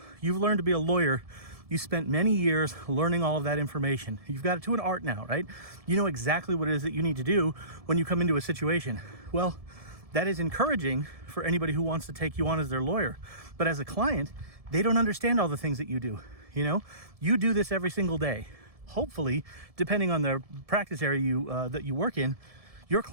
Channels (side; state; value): left; late; 1.7 ms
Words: you've learned to be a lawyer, you spent many years learning all of that information. You've got it to an art now, right? You know exactly what it is that you need to do when you come into a situation. Well, that is encouraging for anybody who wants to take you on as their lawyer. But as a client, they don't understand all the things that you do. You do this every single day. Hopefully, depending on the practice area that you work in, your